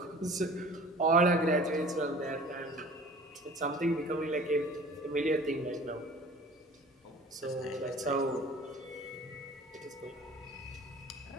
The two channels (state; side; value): normal; both; correlation 0.46